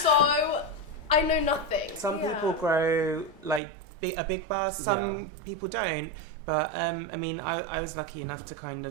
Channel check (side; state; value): left; drops out; at 3.6 s